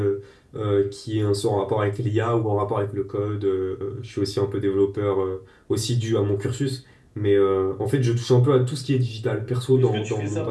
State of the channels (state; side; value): identical; both; correlation 1.00